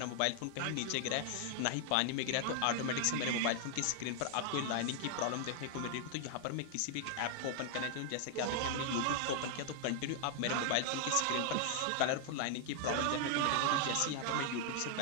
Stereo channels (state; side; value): different; both; correlation 0.00